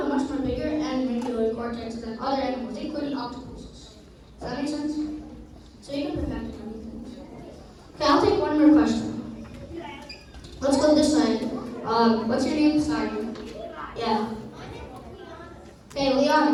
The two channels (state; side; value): identical; both; correlation 1.00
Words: more bigger and regular cortex than other animals, including octopuses. Does that make sense? name? Sorry. Yeah. Okay,